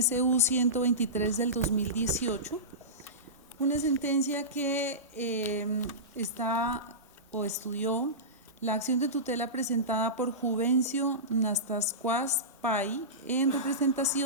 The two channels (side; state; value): both; normal; correlation -0.20